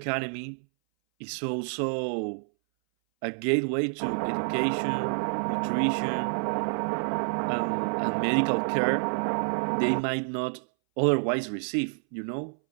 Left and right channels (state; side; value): silent; left; 59 dB below the other